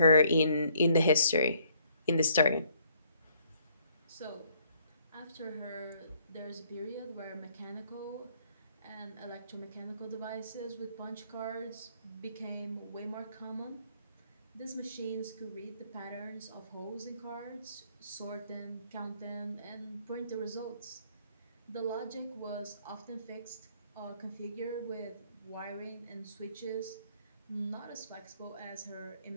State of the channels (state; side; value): inverted; both; correlation -0.65